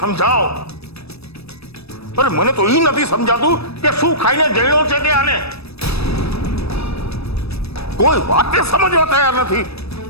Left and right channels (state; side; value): late; right; 0.78 ms